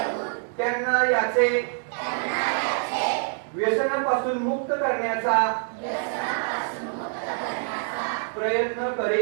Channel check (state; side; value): silent; left; 61 dB below the other